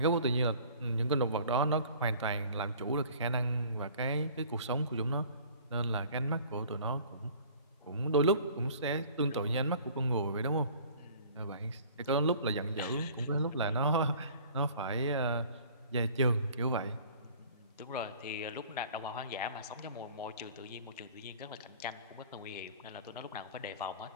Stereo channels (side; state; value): both; inverted; correlation -0.49